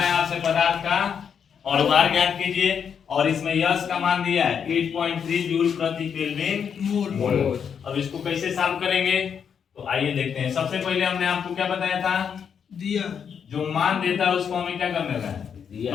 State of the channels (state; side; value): quieter; right; 7.3 dB